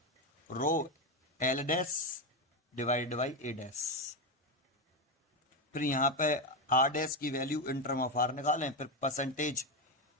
rho L dash divide by A dash. फिर यहाँ पे आर डैश की value in term of R निकालें, फिर परसेंटेज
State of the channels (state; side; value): normal; both; correlation 0.10